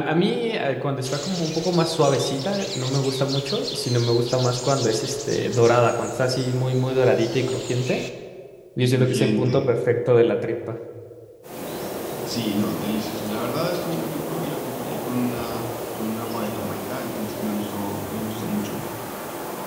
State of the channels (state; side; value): identical; both; correlation 1.00